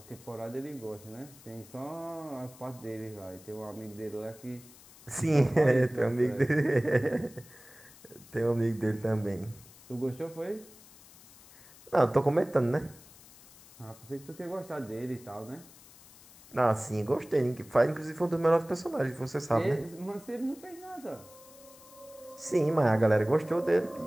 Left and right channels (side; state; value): left; noise; hiss, 22 dB below the sound